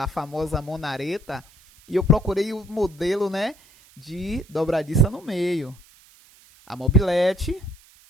a famosa Monareta? E eu procurei o modelo, né, de dobradiça no meio. A mobilete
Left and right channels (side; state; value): right; noise; hiss, 27 dB below the sound